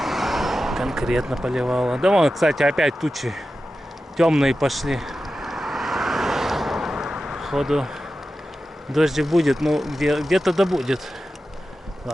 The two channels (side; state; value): both; normal; correlation 0.92